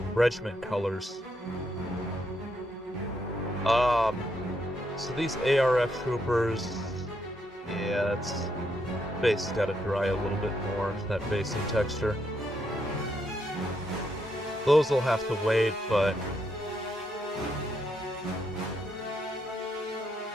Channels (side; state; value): both; normal; correlation 0.78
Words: regiment colors. So these ARF troopers, yeah, it's base got to dry a little bit more, that basing texture. Those will have to wait, but